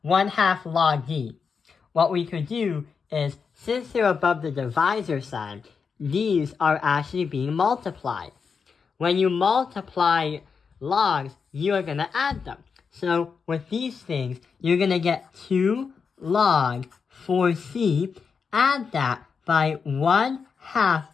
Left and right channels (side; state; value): right; quieter; 5.7 dB